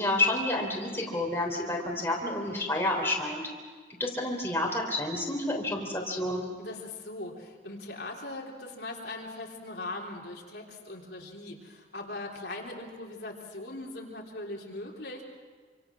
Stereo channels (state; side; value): normal; both; correlation 0.16